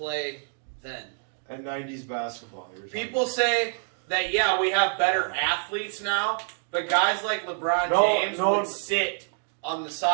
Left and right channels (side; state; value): left; silent; digital silence